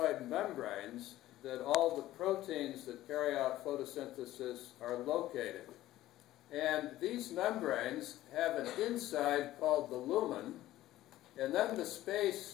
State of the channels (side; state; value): right; quieter; 15.0 dB